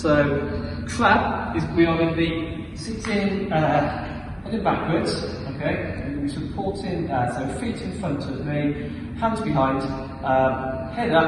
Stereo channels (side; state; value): both; identical; correlation 1.00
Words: crab is we are going to be sitting heading backwards. Okay, and we're supporting so feet in front of me, hands behind, head